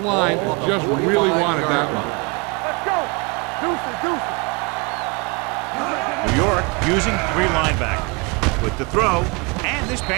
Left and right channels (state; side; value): quieter; left; 29.4 dB